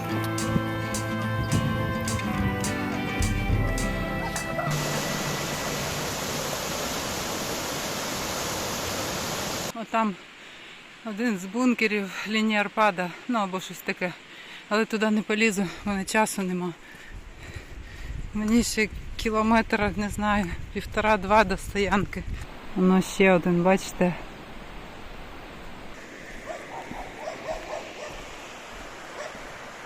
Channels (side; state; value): both; identical; correlation 1.00